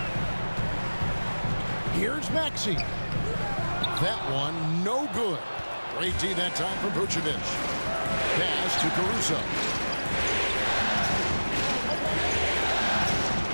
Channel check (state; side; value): inverted; both; correlation -1.00